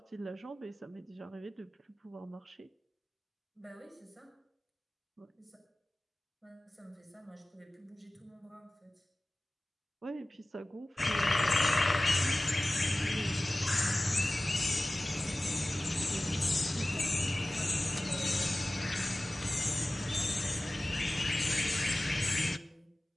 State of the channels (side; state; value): both; normal; correlation 0.97